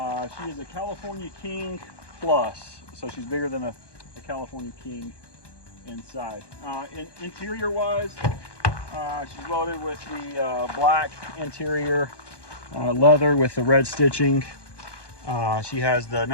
is a California King Plus, so she's bigger than a California King inside. Interior wise, she's loaded with the black interior, leather with the red stitching. She has the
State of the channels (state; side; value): late; right; 1.2 ms